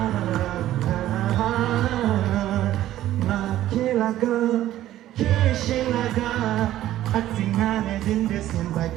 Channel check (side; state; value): left; quieter; 13.5 dB